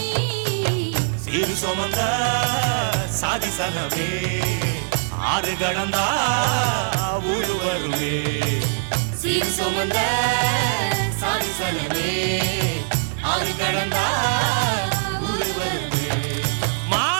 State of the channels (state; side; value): silent; left; 56 dB below the other